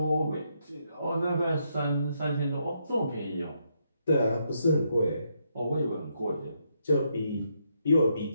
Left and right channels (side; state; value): both; inverted; correlation -0.78